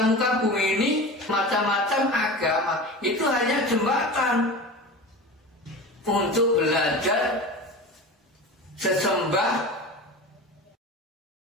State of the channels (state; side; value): normal; both; correlation 0.31